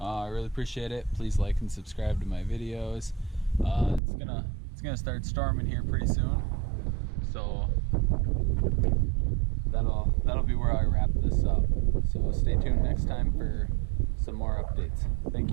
really appreciate it. Please like and subscribe to my videos. It's gonna start storming here pretty soon, so that'll be where I wrap this up. So stay tuned next time for some more updates. Thank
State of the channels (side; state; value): left; drops out; at 4.0 s